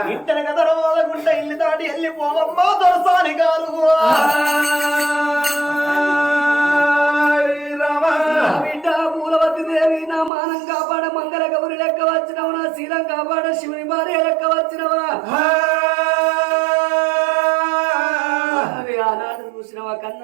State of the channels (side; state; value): left; drops out; at 10.3 s